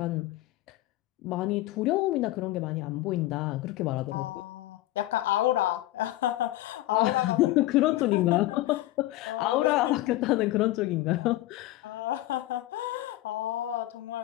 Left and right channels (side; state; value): right; quieter; 16.3 dB